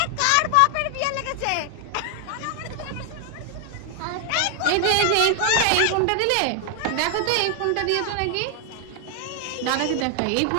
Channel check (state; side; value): different; both; correlation 0.00